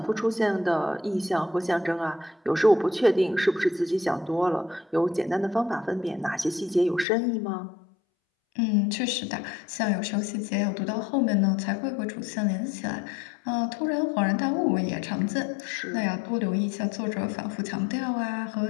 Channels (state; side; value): drops out; right; at 7.1 s